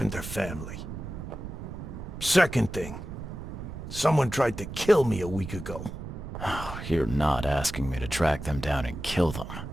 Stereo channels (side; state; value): right; noise; rumble, 9 dB below the sound